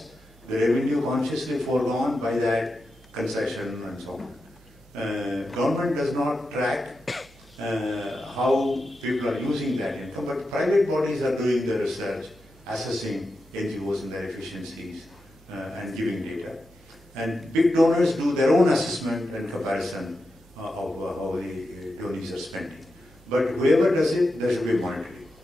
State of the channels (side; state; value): both; normal; correlation 0.89